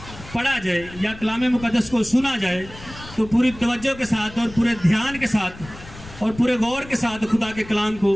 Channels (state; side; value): noise; left; rumble, 17 dB below the sound